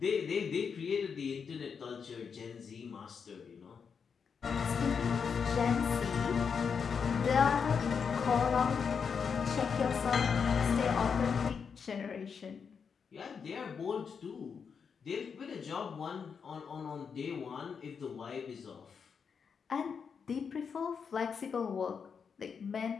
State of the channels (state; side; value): quieter; right; 6.3 dB